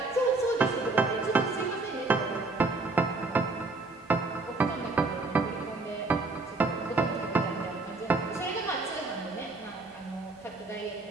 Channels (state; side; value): quieter; left; 3.4 dB